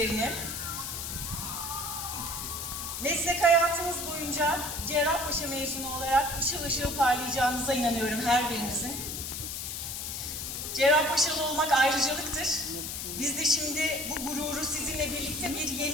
Meslek hayatınız boyunca Cerrahpaşa mezunu olarak ışıl ışıl parlayacağınıza inanıyorum her birinizin. Cerrahpaşalı olmak ayrıcalıktır. Biz de şimdi bu gururu sizinle birlikte bir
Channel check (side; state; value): left; noise; hiss, 5 dB below the sound